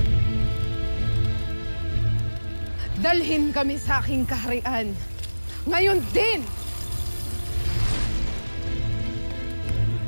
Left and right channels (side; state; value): both; inverted; correlation -1.00